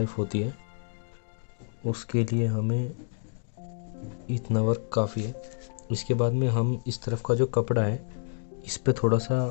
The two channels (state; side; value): silent; right; digital silence